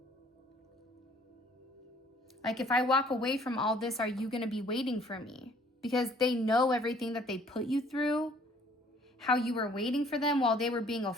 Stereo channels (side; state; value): both; normal; correlation 0.58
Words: Like, if I walk away from all this, are you going to be waiting for me? Because they know everything that they put you through, how you were waiting for them while they were being a